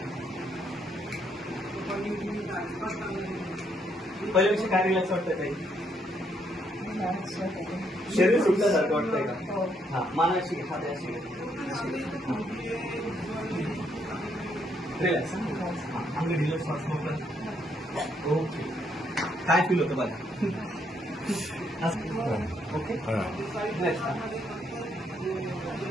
पहिल्यापेक्षा काय रिलॅक्स वाटतंय काही? शरीर सुटल्यासारखं वाटतंय का? हा मानाशी हात अशी रिलॅक्स. आम्ही रिलॅक्स वाटतो. ओके. काय फील होतं बघा. ओके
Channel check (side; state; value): both; normal; correlation 0.73